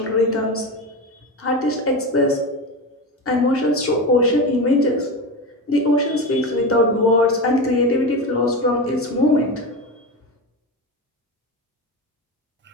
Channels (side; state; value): both; normal; correlation 0.21